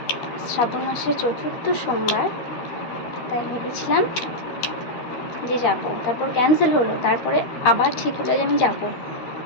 শ্রাবণ মাসের 4র্থ সোমবার, তাই ভেবেছিলাম যে যাব, তারপর ক্যান্সেল হলো, তারপরে আবার ঠিক হলো যে আমি যাব।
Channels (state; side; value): late; right; 13 ms